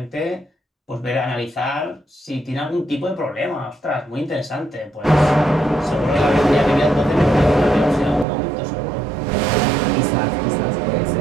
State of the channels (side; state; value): left; drops out; at 8.2 s